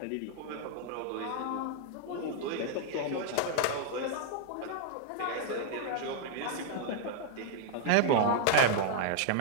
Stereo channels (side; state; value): both; different; correlation -0.01